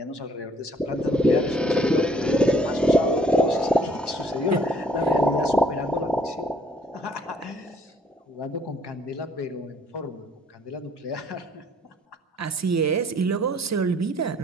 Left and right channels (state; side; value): normal; both; correlation 0.60